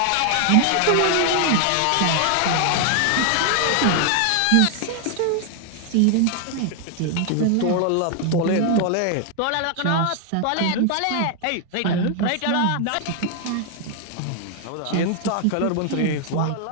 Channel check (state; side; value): different; both; correlation 0.00